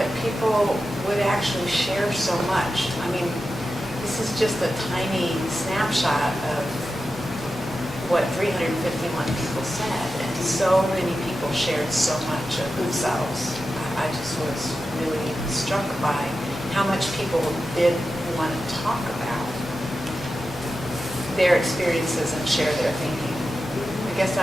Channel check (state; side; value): normal; both; correlation 0.91